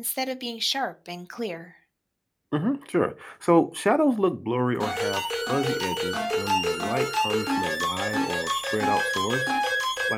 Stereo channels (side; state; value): both; identical; correlation 1.00